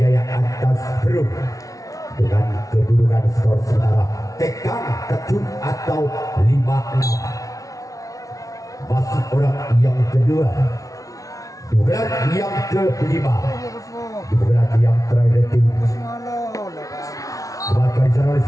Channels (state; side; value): late; right; 0.17 ms